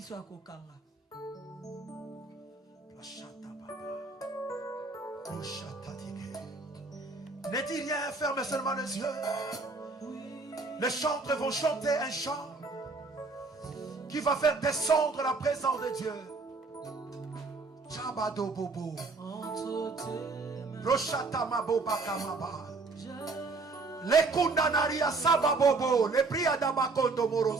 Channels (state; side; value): quieter; left; 3.8 dB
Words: Ne dis rien, ferme seulement les yeux. Les chantres vont chanter un chant qui va faire descendre la présence de Dieu. Chabado bobo. Roshata maboba kamaba. Les kundanaria sababobo. Les priada bakondo